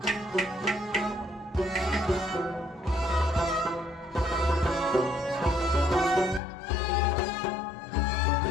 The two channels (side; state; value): right; drops out; at 6.4 s